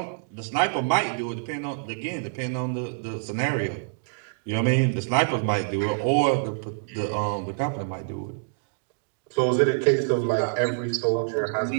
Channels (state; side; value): silent; left; digital silence